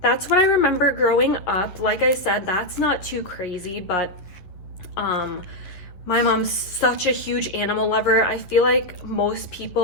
that's what I remember growing up. Like I said, that's not too crazy, but my mom's such a huge animal lover. I feel like most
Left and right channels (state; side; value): late; right; 11 ms